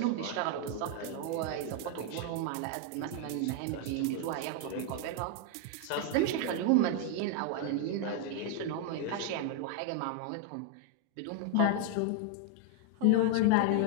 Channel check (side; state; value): both; different; correlation 0.00